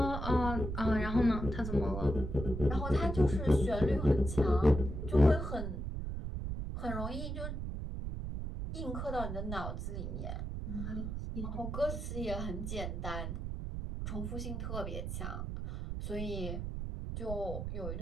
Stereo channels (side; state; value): right; noise; rumble, 4 dB below the sound